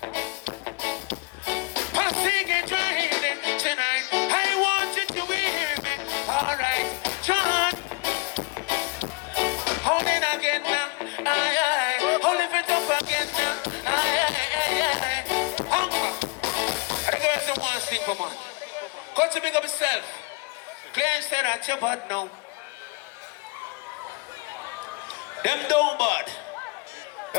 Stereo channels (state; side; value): quieter; right; 28.8 dB